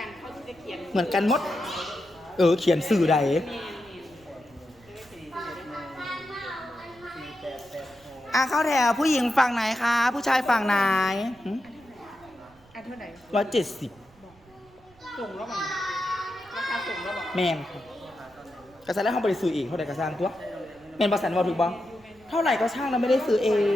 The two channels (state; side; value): noise; right; rumble, 28 dB below the sound